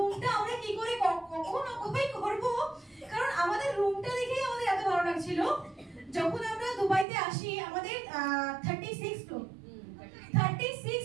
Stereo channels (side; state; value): left; drops out; at 7.1 s